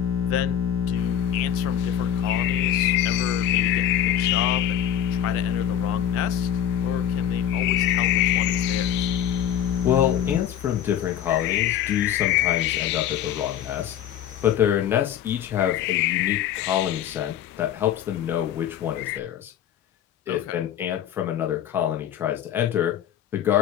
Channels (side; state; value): right; quieter; 10.1 dB